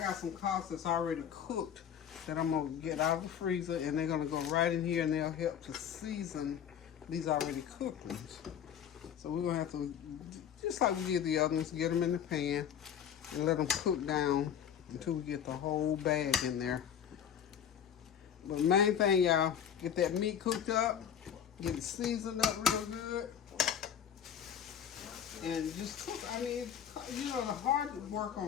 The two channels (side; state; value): right; quieter; 8.7 dB